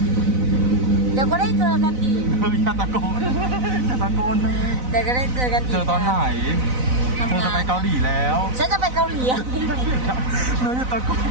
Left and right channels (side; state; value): left; late; 4.0 ms